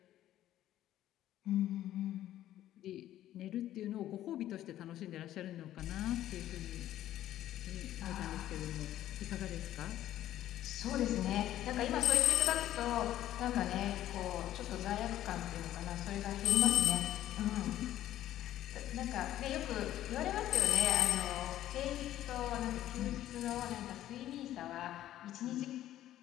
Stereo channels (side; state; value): right; quieter; 13.0 dB